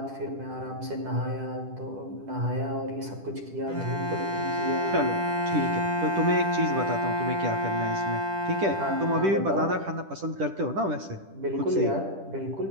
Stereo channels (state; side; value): late; left; 10 ms